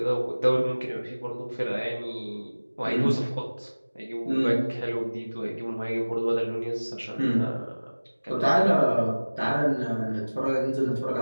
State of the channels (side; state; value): both; inverted; correlation -1.00